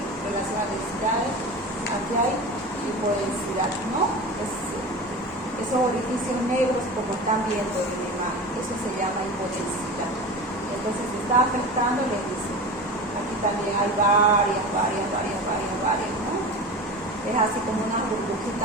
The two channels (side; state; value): both; normal; correlation 0.30